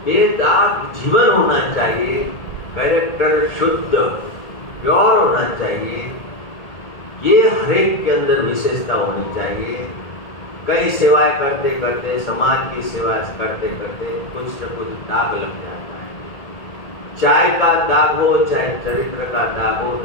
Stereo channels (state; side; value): late; right; 1.8 ms